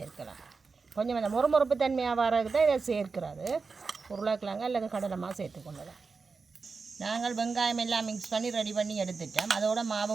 கொஞ்சம் அந்த முறுமுறுப்பு தன்மையாக வரதுக்கு தான் இதை சேர்க்கிறது. உருளைக்கிழங்கு அல்லது கடலை மாவு சேர்த்துக்கொள்ளலாம். நாங்கள் வெங்காயம் எல்லாம் மிக்ஸ் பண்ணி ரெடி பண்ணி எடுத்துட்டோம். அதோட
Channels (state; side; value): quieter; left; 4.6 dB